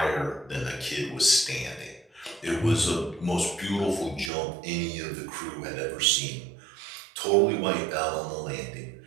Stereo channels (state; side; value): drops out; left; at 4.3 s